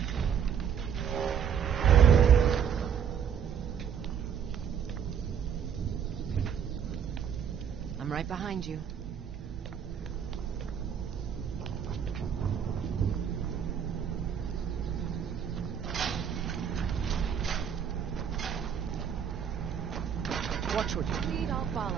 I'm right behind you. Watch what you lead, I'll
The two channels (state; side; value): quieter; left; 7.9 dB